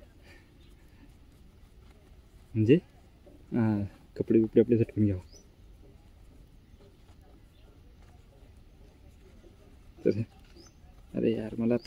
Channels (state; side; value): identical; both; correlation 1.00